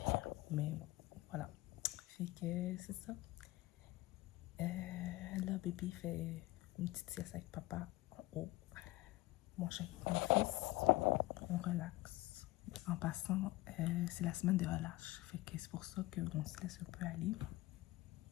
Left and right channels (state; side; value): quieter; right; 18.9 dB